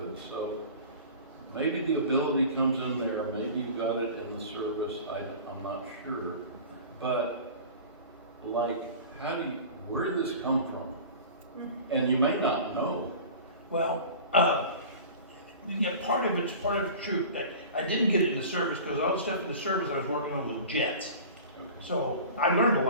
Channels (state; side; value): inverted; both; correlation -0.39